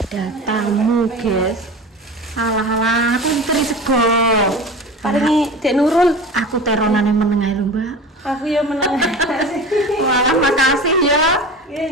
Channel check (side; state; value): both; normal; correlation 0.33